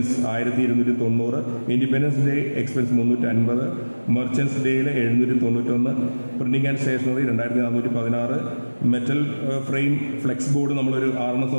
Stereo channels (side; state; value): both; inverted; correlation -1.00